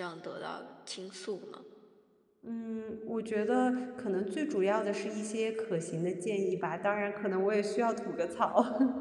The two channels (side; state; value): both; identical; correlation 1.00